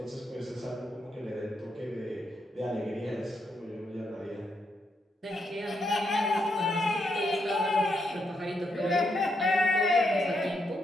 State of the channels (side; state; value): both; normal; correlation 0.79